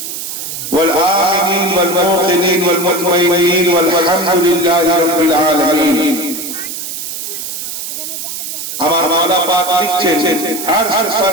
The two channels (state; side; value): noise; right; hiss, 7 dB below the sound